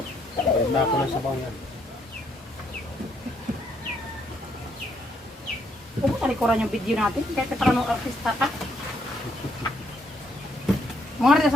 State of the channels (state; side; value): normal; both; correlation 0.73